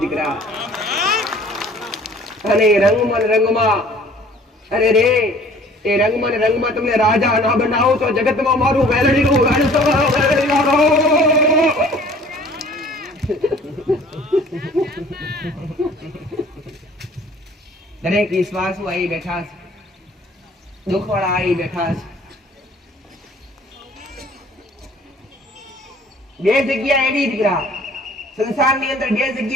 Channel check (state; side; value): normal; both; correlation 0.52